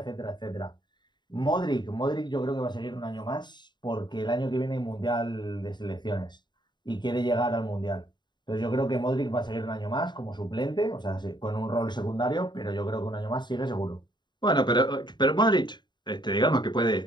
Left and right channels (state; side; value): late; right; 0.21 ms